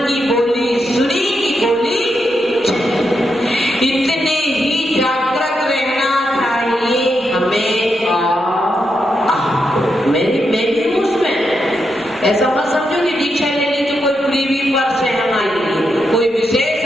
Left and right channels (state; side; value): normal; both; correlation 0.83